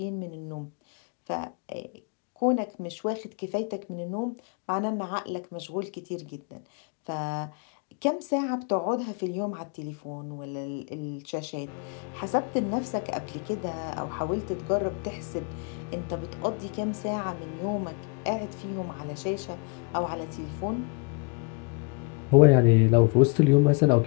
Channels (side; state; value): right; quieter; 32.3 dB